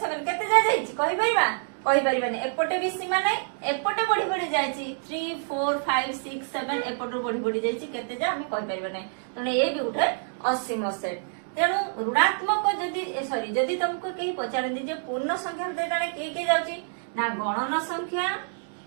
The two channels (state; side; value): silent; left; digital silence